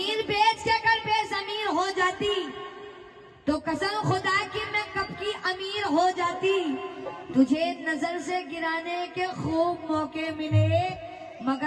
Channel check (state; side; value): identical; both; correlation 1.00